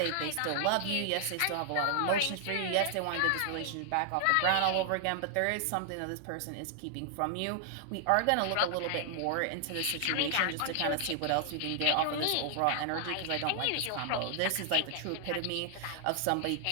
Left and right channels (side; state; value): both; different; correlation 0.00